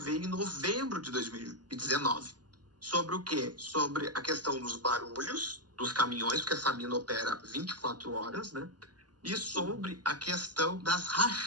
em novembro de 2019. Sobre o quê? Sobre a questão dos barulhos dos caminhões, porque essa mina opera 24 horas, né? E sobre a questão das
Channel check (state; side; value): late; left; 0.69 ms